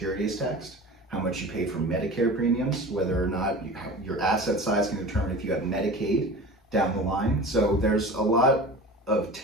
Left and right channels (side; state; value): both; normal; correlation 0.36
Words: is taxed, how much you pay for Medicare premiums, whether or not your asset size can determine if you have Medicaid down the line. So there's a lot of